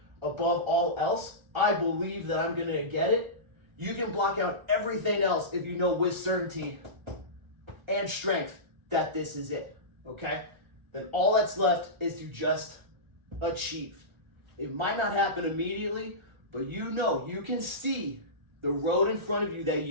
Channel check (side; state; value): left; late; 1.4 ms